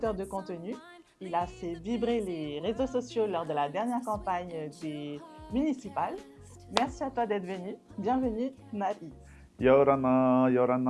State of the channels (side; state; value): both; identical; correlation 1.00